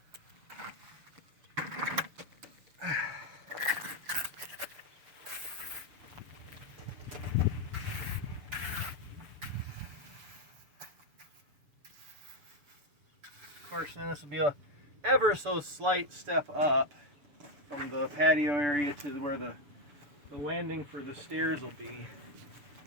Of course, then this will be a ever so slight step up from the patio area to where the landing for the stairs will be.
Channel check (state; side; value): late; left; 6.8 ms